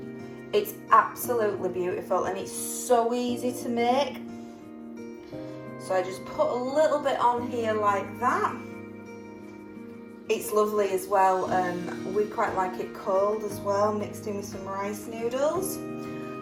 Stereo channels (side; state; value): both; identical; correlation 1.00